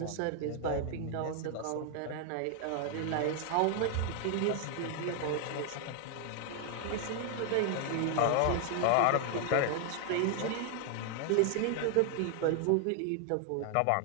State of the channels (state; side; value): different; both; correlation 0.00